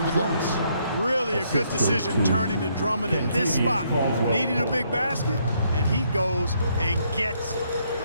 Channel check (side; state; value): both; inverted; correlation -0.72